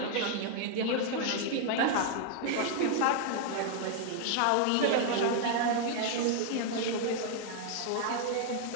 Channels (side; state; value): both; different; correlation 0.00